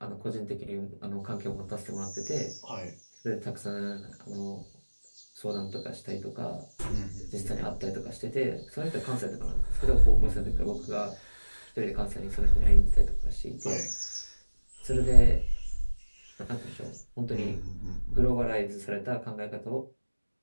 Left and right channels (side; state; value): both; inverted; correlation -1.00